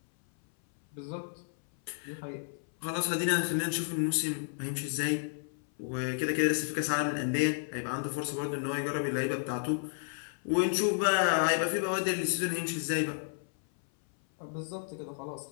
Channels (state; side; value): silent; right; 57 dB below the other